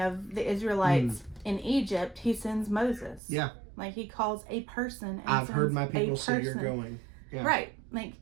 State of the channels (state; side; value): drops out; left; at 3.2 s